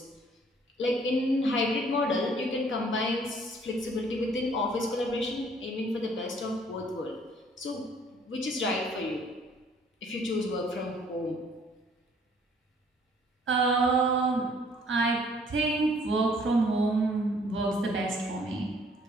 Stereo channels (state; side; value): normal; both; correlation 0.60